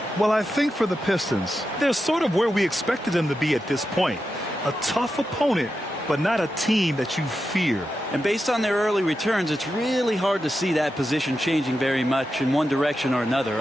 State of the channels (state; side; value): normal; both; correlation 0.89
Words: Well, I think for the Pistons, they're sort of where we expected them to be at this point. A tough opponent, but not a team that you fear. And based on their early returns, it's really hard to see that position changing very much in one direction or another.